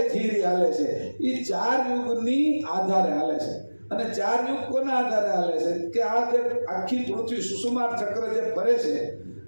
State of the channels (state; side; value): inverted; both; correlation -1.00